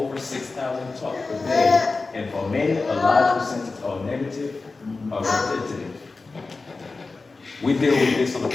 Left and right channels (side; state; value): right; quieter; 3.8 dB